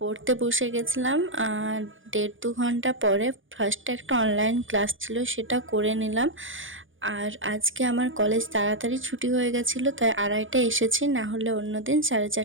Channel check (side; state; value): left; late; 0.57 ms